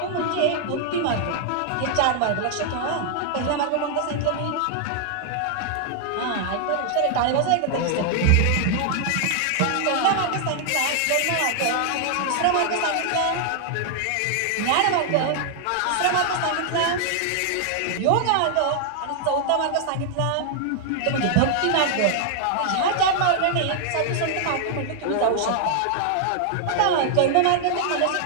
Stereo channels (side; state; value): both; different; correlation 0.00